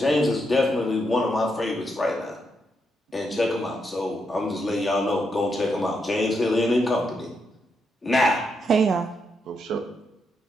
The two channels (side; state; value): both; normal; correlation 0.81